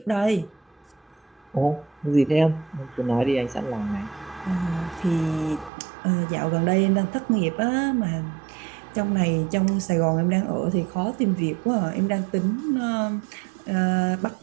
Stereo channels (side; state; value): left; drops out; at 5.7 s